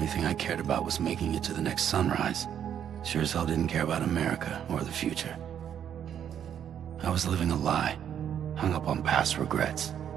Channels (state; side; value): quieter; left; 9.2 dB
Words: thing I cared about was making it to the next sunrise. Sure as hell didn't care about America or the future. I was living a lie, hung up on past regrets.